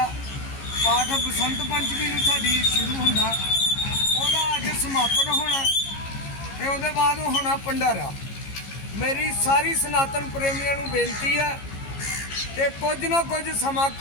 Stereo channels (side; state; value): right; late; 15 ms